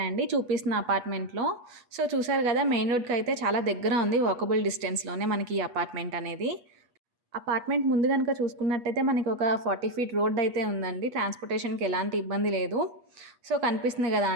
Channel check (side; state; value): left; late; 8.4 ms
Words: చూపిస్తున్న అపార్ట్మెంట్‌లో. సో, చూసారు గదా! మెయిన్ రోడ్‌కైతే చాలా దగ్గర ఉంది. వాకబుల్ డిస్టెన్స్‌లోనే మనకి ఈ అపార్ట్మెంట్ అనేది. అపార్ట్మెంట్ ముందు గనుక చూసుకున్నట్టయితే మనకి ఒక 40 ఫీట్ రోడ్ అయితే ఉందండి. ట్రాన్స్‌పోర్టేషన్‌కి ఎలాంటి ఇబ్బంది లేదు. సో, కనిపిస్తుంది గదా